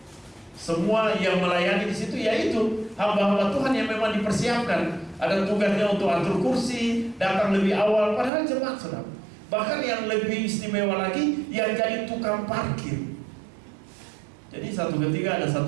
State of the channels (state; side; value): drops out; left; at 8.3 s